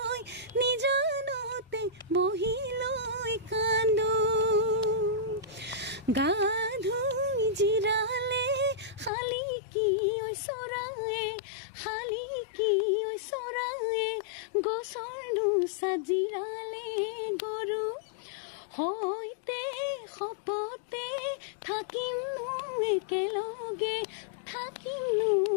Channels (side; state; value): right; drops out; at 9.1 s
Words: লৈ কান্দো গা ধুই জিৰালে খালি কি চৰায়ে গছৰ নোচাত জিৰালে গৰু হৈতে শপতে থাকিমনো একেলগে